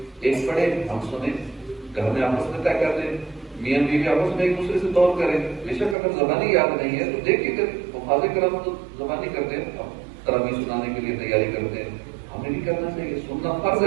ایک پڑھے ہم سنیں، گھر میں آپس میں طے کر دیں، میاں بیوی آپس میں ایک دوسرے سے دور کریں. بے شک اگر زبانی یاد نہیں ہے تو دیکھ کے حفاظ کرم تو زبانی کرتے ہیں، تراویح سنانے کے لیے تیاری کرتے ہیں. ہمیں بھی کرنا چاہیے، سننا فرض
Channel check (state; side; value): drops out; left; at 6.0 s